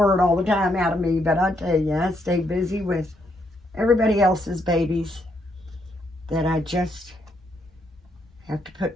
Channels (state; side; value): normal; both; correlation 0.75